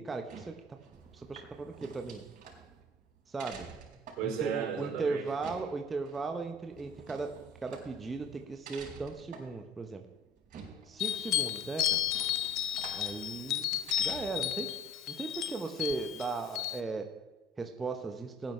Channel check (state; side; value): normal; both; correlation 0.50